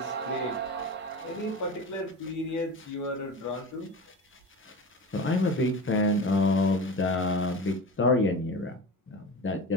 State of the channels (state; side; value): normal; both; correlation 0.29